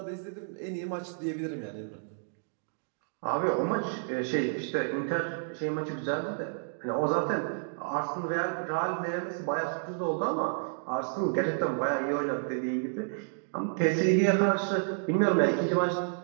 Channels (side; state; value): left; silent; digital silence